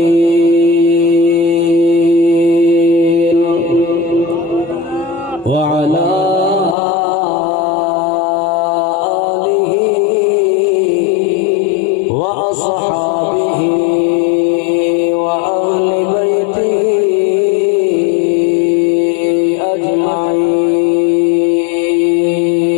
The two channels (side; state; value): right; drops out; at 6.8 s